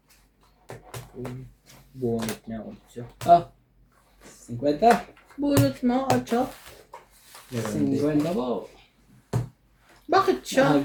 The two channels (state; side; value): identical; both; correlation 1.00